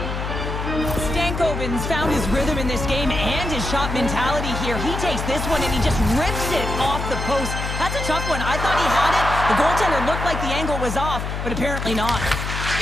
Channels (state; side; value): noise; left; hum, 4 dB below the sound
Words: Stankoven's found his rhythm in this game and his shot mentality here. He takes this one and he just rips it off the post. That's a tough one. I thought he had it. The goaltender looked like the angle was off, but apparently not.